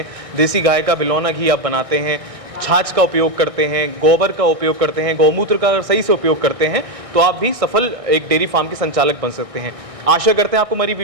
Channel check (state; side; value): late; left; 1.6 ms